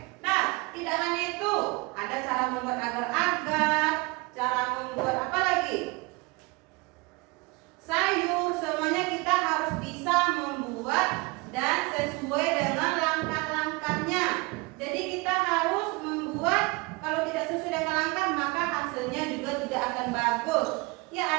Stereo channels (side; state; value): left; quieter; 25.9 dB